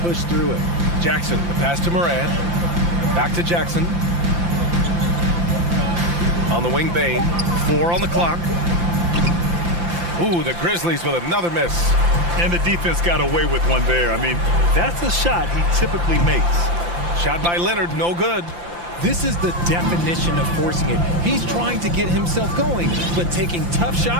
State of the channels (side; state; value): left; late; 5.8 ms